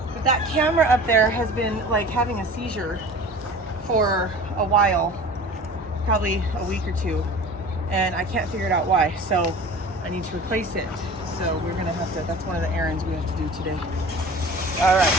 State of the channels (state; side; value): normal; both; correlation 0.40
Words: but that camera up there has been like having a seizure for a while, probably a week or 2, and I can't figure it out why. So I need to replace it. So we're gonna have to. That's one of the errands we have to do today. All right,